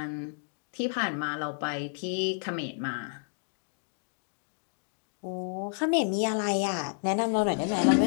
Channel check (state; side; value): silent; right; digital silence